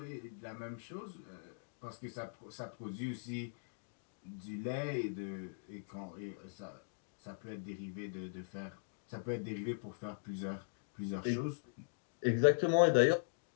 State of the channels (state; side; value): silent; right; digital silence